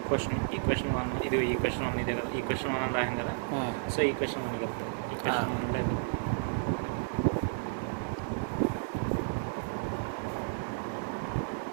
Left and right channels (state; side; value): silent; left; digital silence